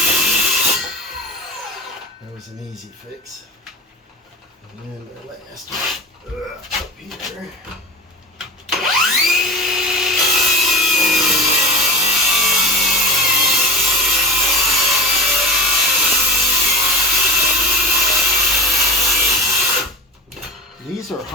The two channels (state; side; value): normal; both; correlation 0.31